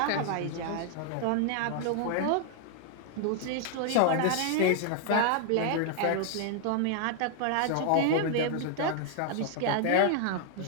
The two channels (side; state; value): both; different; correlation -0.01